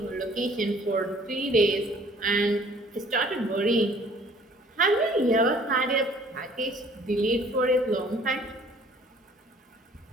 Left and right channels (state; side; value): normal; both; correlation 0.55